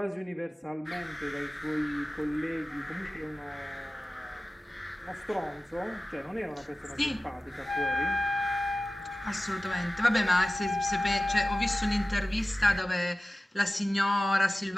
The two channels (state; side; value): normal; both; correlation 0.96